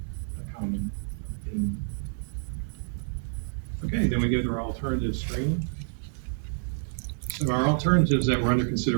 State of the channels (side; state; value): left; silent; digital silence